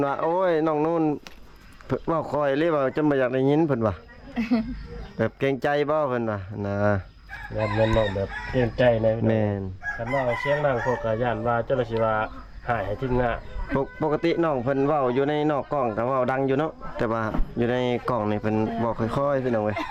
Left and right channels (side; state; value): both; identical; correlation 1.00